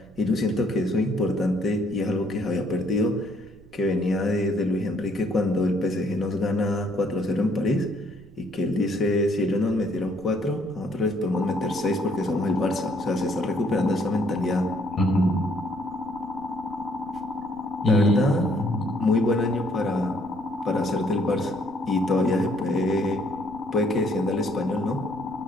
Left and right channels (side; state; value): right; noise; rumble, 23 dB below the sound